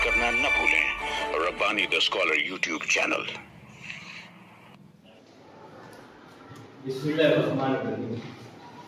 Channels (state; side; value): identical; both; correlation 1.00